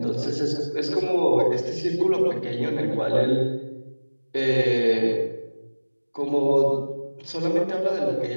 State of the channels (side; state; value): both; inverted; correlation -1.00